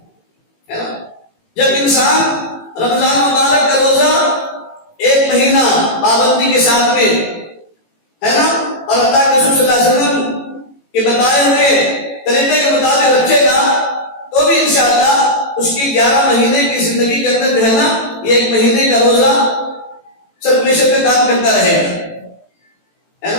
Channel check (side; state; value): right; late; 18 ms